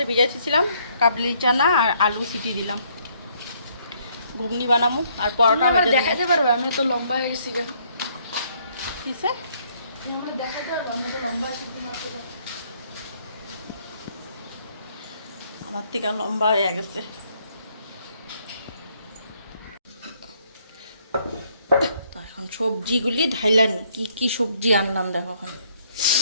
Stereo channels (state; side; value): inverted; both; correlation -0.67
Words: ভিজাইছিলাম, কাবলি চানা আর আলু সিটি দিলাম, ঘুগনি বানাবো আর পরোটা দেখাতে পারবে। আমি তো লম্বা হয়ে গেছি, কিসে আমার থেকে লম্বা হয়ে গেছে। তো এখন সবজিগুলি ঢাইলানি, কি কি সবজি আনলাম দেখো, এখন